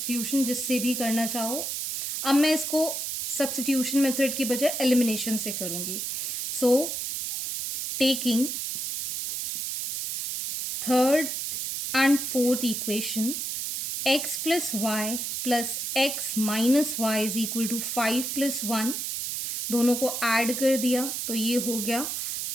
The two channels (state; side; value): noise; right; hiss, 3 dB below the sound